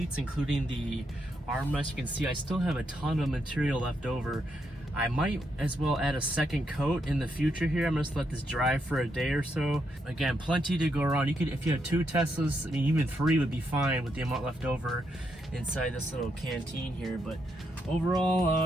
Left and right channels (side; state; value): both; normal; correlation 0.80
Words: including the armrest, you can see I still have a ton of material left over. I might as well add a second coat in the future here. I'm just let this dry for a day or so. Again, plenty to go around. You could, if you have 2 Teslas, I mean, even 3 would be fine with the amount left over inside this little canteen here. But